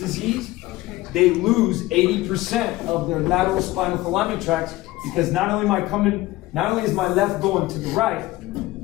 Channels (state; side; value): quieter; right; 18.2 dB